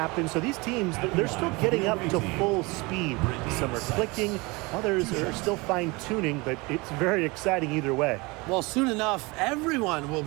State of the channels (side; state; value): left; quieter; 25.2 dB